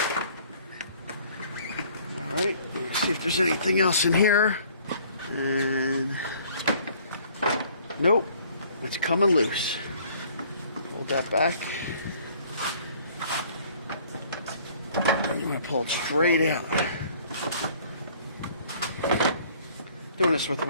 Alright, let's see if there's anything else in here. And nope, it's coming loose. hold that back. I'm going to pull it straight out. Doing this with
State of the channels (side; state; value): both; inverted; correlation -0.56